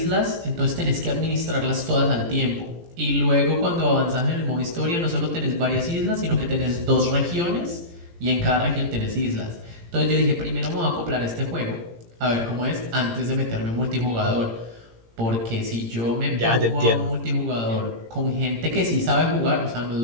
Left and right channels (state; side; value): late; left; 17 ms